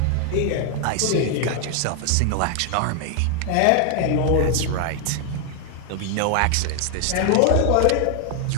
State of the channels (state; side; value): different; both; correlation 0.00